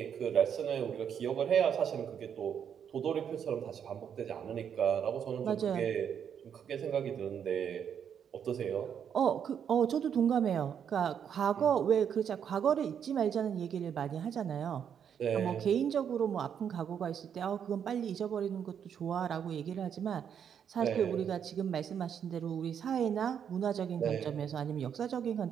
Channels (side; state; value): left; quieter; 8.1 dB